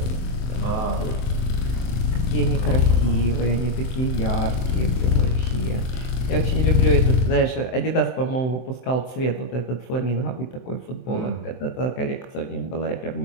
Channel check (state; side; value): late; right; 23 ms